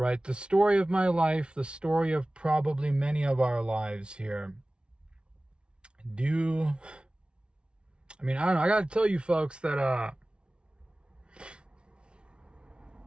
The story of my life, the story of probably many of our lives here. I mean, I don't know. I got to tell you folks that,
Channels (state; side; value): late; left; 0.057 ms